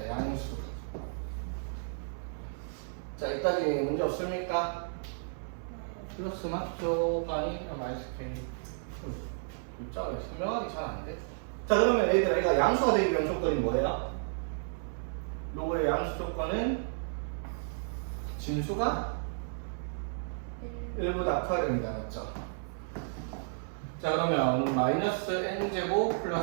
양수. 자, 이따지 문제 없습니까? 플러스 맞죠? 아니, 마이너스 k. 글자가 설명하기 잘 안 돼. 자, 그러면 얘들아, 얘가 양수가 되기 위한 조건이 뭐예요? 로그의 양수 조건은 진수가 1보다 커야 됩니다. 맞죠? 자, 그러면 마이너스 n제곱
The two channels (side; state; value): left; silent; 56 dB below the other